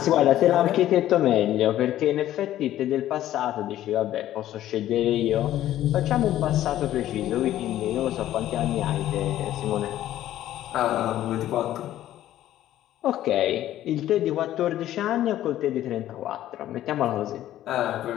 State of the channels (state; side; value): quieter; right; 13.0 dB